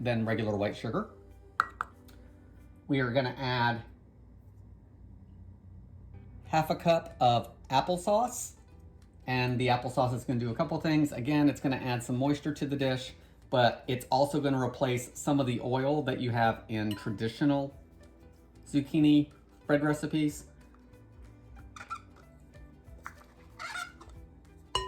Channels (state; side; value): identical; both; correlation 1.00